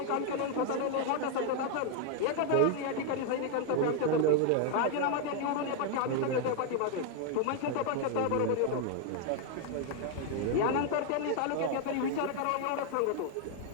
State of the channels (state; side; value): different; both; correlation 0.01